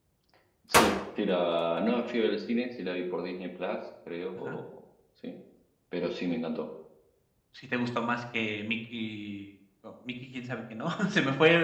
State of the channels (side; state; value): both; identical; correlation 1.00